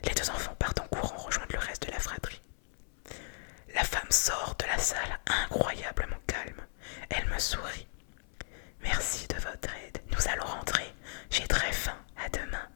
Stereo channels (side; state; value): right; silent; 54 dB below the other